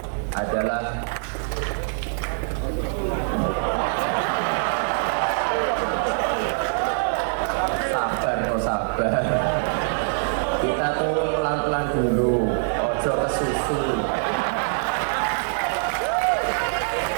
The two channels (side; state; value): left; silent; digital silence